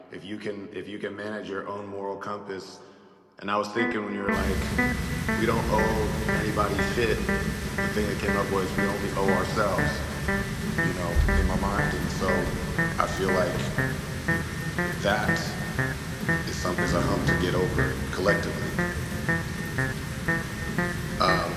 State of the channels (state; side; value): identical; both; correlation 1.00